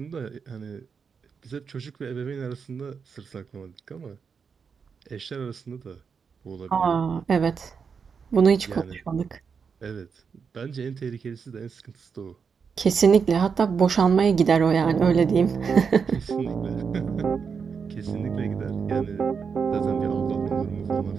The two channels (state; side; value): quieter; left; 6.0 dB